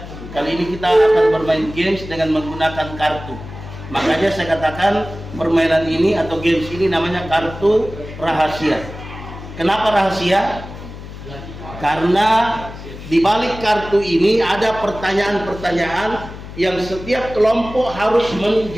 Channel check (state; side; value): noise; left; hum, 13 dB below the sound